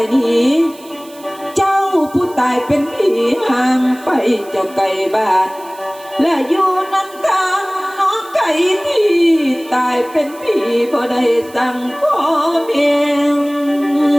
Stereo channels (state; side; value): noise; right; hiss, 22 dB below the sound